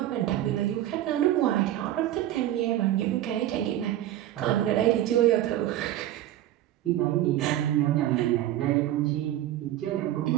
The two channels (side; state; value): left; quieter; 13.1 dB